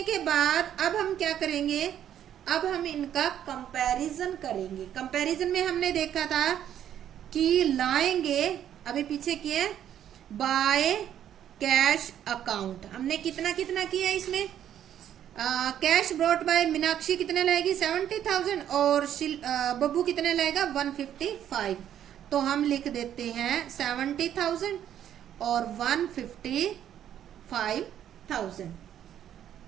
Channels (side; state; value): left; quieter; 10.4 dB